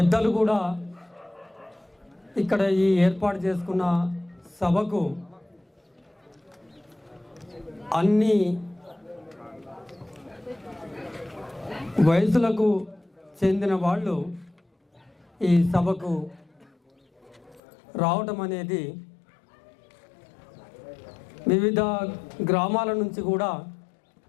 కూడా ఇక్కడ ఈ ఏర్పాటు చేసుకున్న సభకు అన్ని వయసులకు చెందిన వాళ్ళు ఈ సభకు రావడం అనేది వివిధ గ్రామాల నుంచి కూడా,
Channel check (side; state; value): right; drops out; at 17.6 s